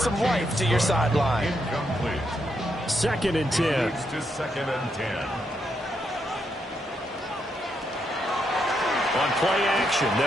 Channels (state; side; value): normal; both; correlation 0.79